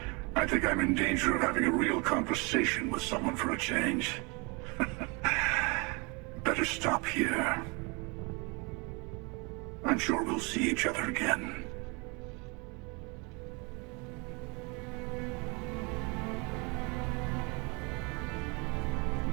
I think I'm in danger of having a real conversation with someone for a change. Better stop here. I'm sure we'll see each other again.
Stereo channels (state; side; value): quieter; left; 30.0 dB